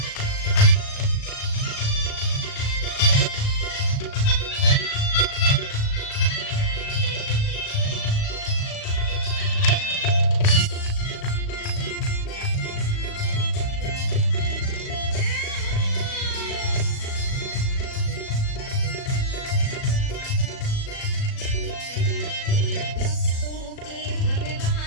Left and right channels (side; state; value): right; late; 37 ms